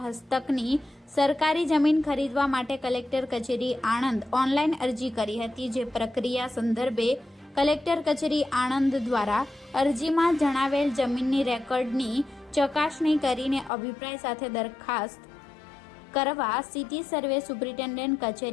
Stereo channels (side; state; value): right; drops out; at 13.7 s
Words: હસ્તકની સરકારી જમીન ખરીદવા માટે કલેક્ટર કચેરી આણંદ ઓનલાઈન અરજી કરી હતી. જે પ્રક્રિયા સંદર્ભે કલેક્ટર કચેરી આણંદ દ્વારા અરજીમાં જણાવેલ જમીનની રેકોર્ડની ચકાસણી કરીને અભિપ્રાય સાથે દરખાસ્ત કરવા સિટી સર્વે સુપ્રિન્ટેન્ડન્ટ